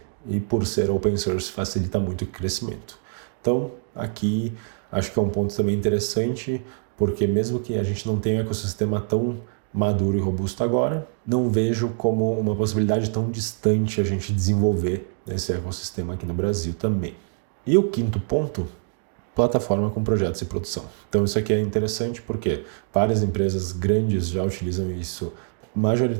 E por ser open source, facilita muito o crescimento. Então, aqui, acho que é um ponto também interessante, porque mesmo que a gente não tenha um ecossistema tão maduro e robusto agora, não vejo como uma possibilidade tão distante a gente desenvolver esse ecossistema aqui no Brasil também. E o quinto ponto, plataforma com projetos e produção. Então isso aqui é interessante porque várias empresas grandes já utilizam isso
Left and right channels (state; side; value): silent; left; 62 dB below the other